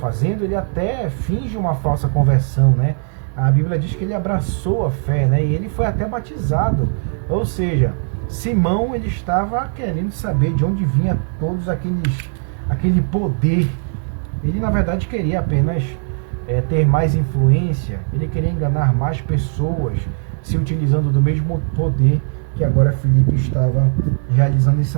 ele até finge uma falsa conversão, né? A Bíblia diz que ele abraçou a fé, né? E ele foi até batizado. Ou seja, Simão, ele estava querendo saber de onde vinha todos aquele poder. Ele, na verdade, queria apenas ter mais influência. Ele queria enganar mais pessoas, se utilizando do mesmo poder que agora Filipe estava realizando em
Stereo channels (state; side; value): silent; left; digital silence